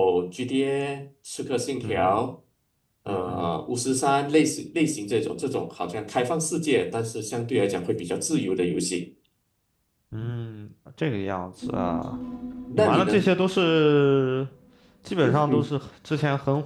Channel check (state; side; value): identical; both; correlation 1.00